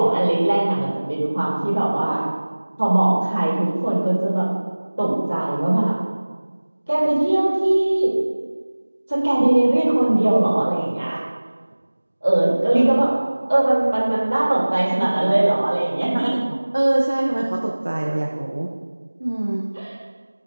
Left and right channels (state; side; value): inverted; both; correlation -1.00